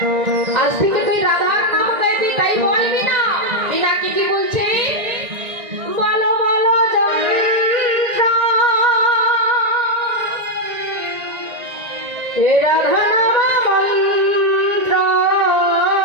আজ থেকে তুই রাধার নাম গাইবি, তাই বলবি না। বিনা কি কি বলছে, বলো বলো যন্ত্র হে রাধা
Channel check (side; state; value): left; late; 1.9 ms